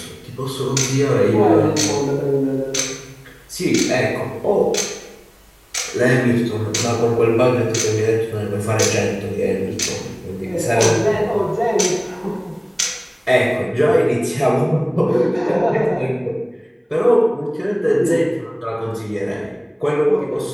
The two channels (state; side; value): identical; both; correlation 1.00